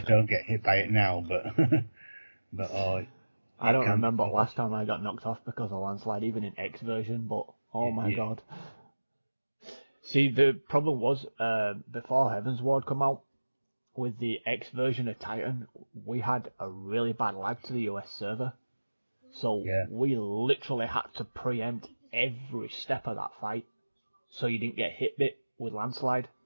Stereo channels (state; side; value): inverted; both; correlation -1.00